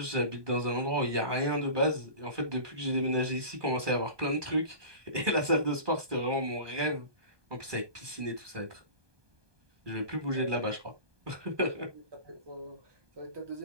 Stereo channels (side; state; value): left; late; 1.2 ms